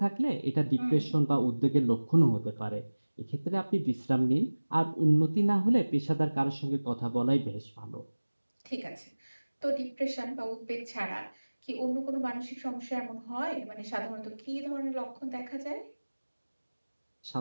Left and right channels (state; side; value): inverted; both; correlation -1.00